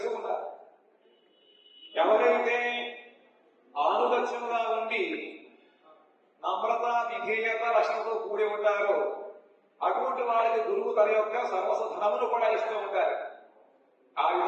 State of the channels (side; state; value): both; identical; correlation 1.00